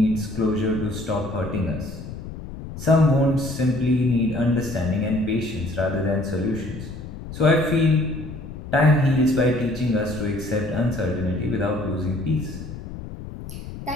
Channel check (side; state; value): left; noise; rumble, 11 dB below the sound